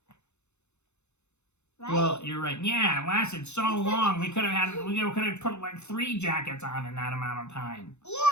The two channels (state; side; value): late; right; 0.82 ms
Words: Right? Well, you're right. Yeah, it lasted so long. We could have put like 3 jackets on in that amount of time.